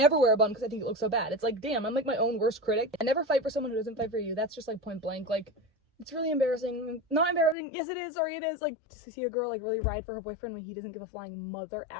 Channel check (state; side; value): drops out; right; at 7.6 s